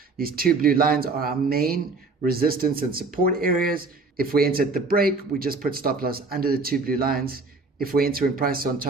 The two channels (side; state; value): left; quieter; 3.8 dB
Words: These 2 blue lines are our main resistance and support areas. If we enter at the break, we just put stop loss under the 2 blue lines. If we enter in price on